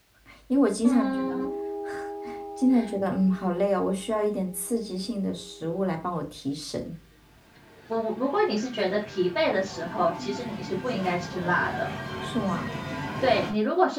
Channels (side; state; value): both; identical; correlation 1.00